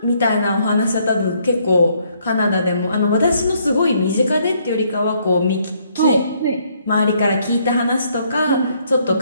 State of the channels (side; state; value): both; inverted; correlation -0.69